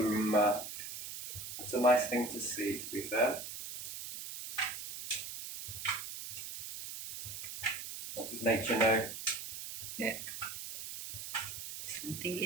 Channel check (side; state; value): right; noise; hiss, 7 dB below the sound